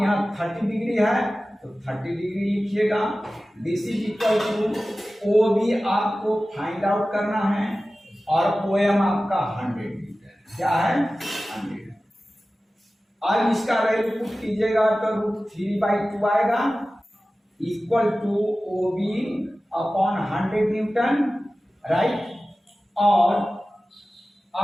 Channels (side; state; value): both; normal; correlation 0.96